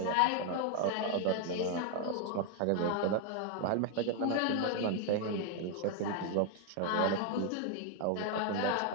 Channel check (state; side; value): different; both; correlation 0.01